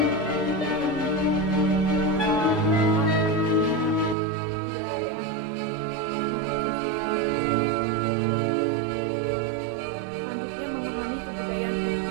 selanjutnya memahami kebudayaan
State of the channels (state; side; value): drops out; left; at 4.2 s